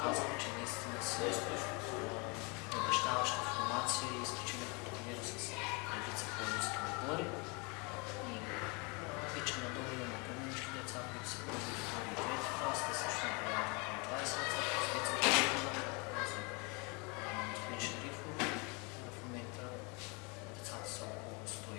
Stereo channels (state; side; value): quieter; right; 30.7 dB